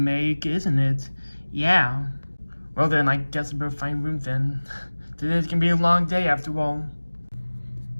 isn't it? Yeah. Well then, I guess I better find room then. Today's gonna be a long day after all.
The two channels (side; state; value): both; inverted; correlation -1.00